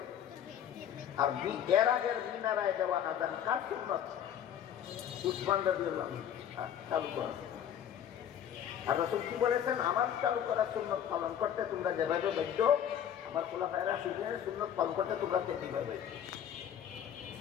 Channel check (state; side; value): quieter; right; 9.6 dB